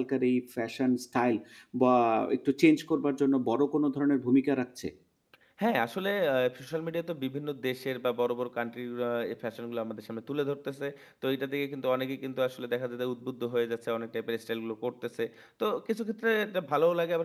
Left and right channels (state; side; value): identical; both; correlation 1.00